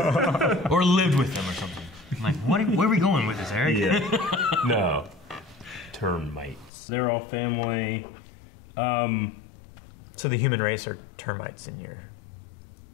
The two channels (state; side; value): drops out; right; at 6.7 s